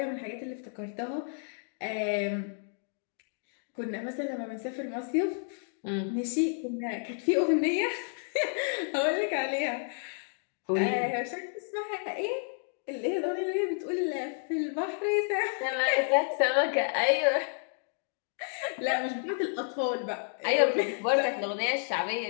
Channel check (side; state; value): right; silent; 57 dB below the other